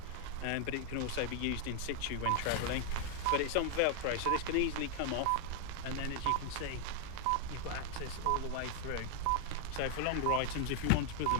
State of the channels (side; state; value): both; different; correlation 0.00